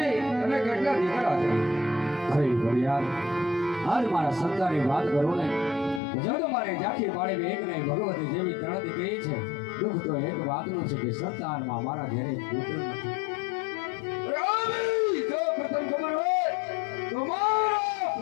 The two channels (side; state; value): right; drops out; at 6.0 s